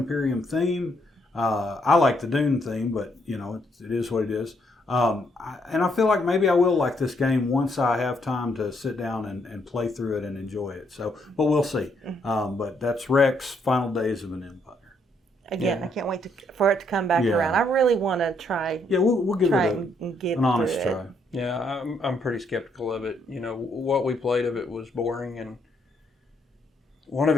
theme. I like the Dune theme, but it is what it is. And I feel like maybe I will like this game once I have time to sit down and play through it and enjoy it. So, but we'll see. But that's Rex: Final Days of an Empire. Again, I can't wait for it to come back around. I really want to try. Yeah, we'll give it an honest try. Yeah, I'm pretty skeptical of it. What we played of it was boring, and one of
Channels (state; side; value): normal; both; correlation 0.73